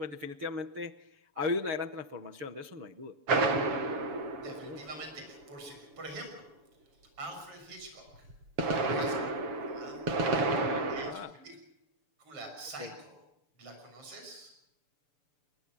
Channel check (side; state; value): left; late; 6.9 ms